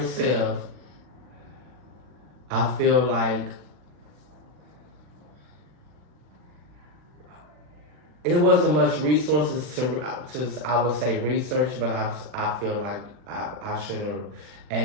self, I feel like it wasn't much resources to I would say research, but I feel like I should have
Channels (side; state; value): left; late; 40 ms